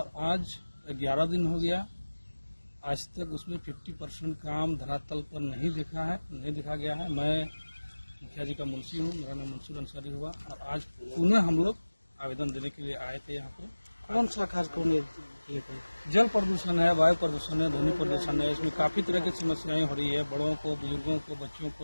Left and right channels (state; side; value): inverted; both; correlation -1.00